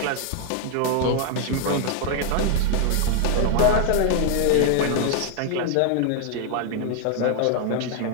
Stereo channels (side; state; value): both; different; correlation 0.00